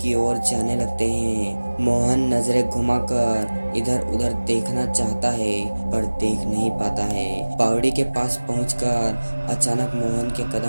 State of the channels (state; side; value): inverted; both; correlation -1.00